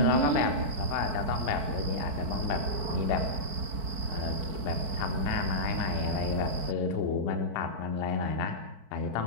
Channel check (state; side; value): late; left; 4.5 ms